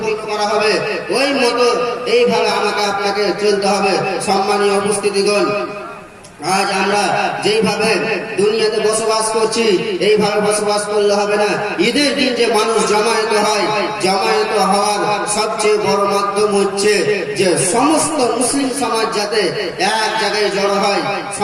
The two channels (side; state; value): both; identical; correlation 1.00